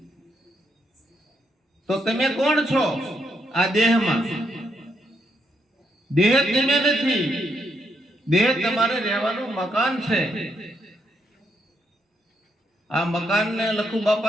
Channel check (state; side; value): normal; both; correlation 0.78